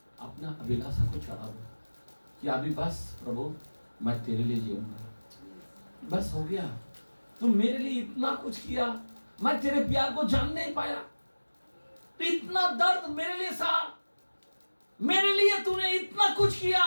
अपना अभिलाषा को चढ़ाओ कि अभी बस प्रभु मैं तेरे लिए जीऊंगा, बस हो गया। तुम मेरे लिए इतना कुछ किया, मैं तेरे प्यार को जान नहीं पाया, इतना दर्द मेरे लिए सहा, मेरे लिए तूने इतना कुछ किया,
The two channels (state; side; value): inverted; both; correlation -1.00